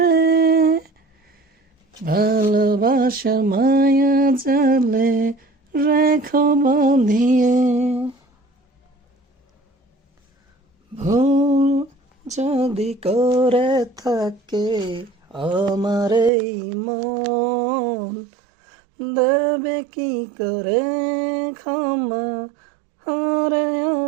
ভালোবাসার মায়া জালে রেখা বাঁধিয়ে। ভুল যদি করে থাকে আমার এই মন, দেবে কি করে ক্ষমা হারে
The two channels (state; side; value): drops out; left; at 16.3 s